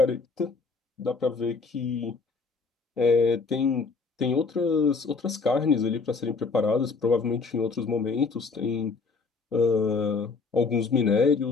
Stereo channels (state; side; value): quieter; right; 4.5 dB